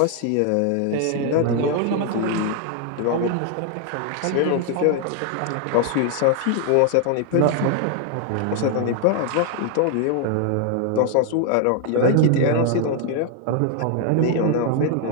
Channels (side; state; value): both; different; correlation 0.00